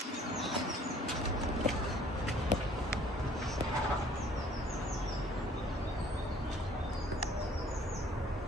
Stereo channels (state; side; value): normal; both; correlation 0.56